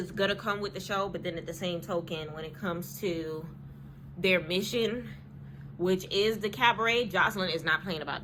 going to come with the show, but then at the same token, when it comes to their mission, which is the Cabaret, Joseline is not playing about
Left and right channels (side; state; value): both; identical; correlation 1.00